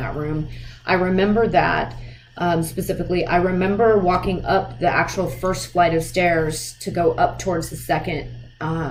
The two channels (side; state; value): both; identical; correlation 1.00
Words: room. I remember that specifically. I remember walking up the actual first flight of stairs to go up towards the second